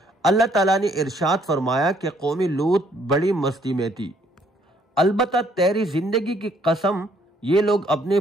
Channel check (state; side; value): normal; both; correlation 0.66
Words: اللہ تعالیٰ نے ارشاد فرمایا کہ قوم لوط بڑی مستی میں تھی، البتہ تیری زندگی کی قسم یہ لوگ اپنے